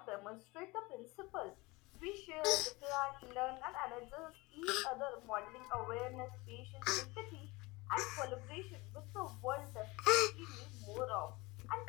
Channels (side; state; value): right; quieter; 23.4 dB